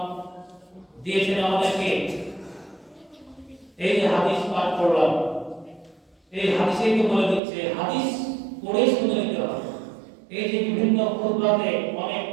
দিয়েছেন আমাদেরকে। এই যে হাদিস পাঠ করলাম, এই হাদিসেই তো বলে দিচ্ছে, হাদিস পড়ে শুনে নিতে হবে। এই যে বিভিন্ন খুতবাতে অনেক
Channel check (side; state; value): left; drops out; at 7.4 s